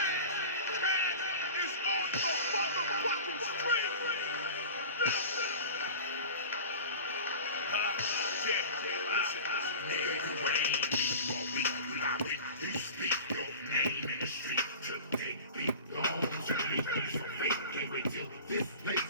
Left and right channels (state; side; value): inverted; both; correlation -0.36